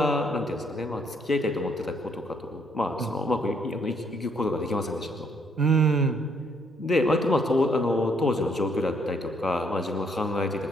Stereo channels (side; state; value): both; normal; correlation 0.69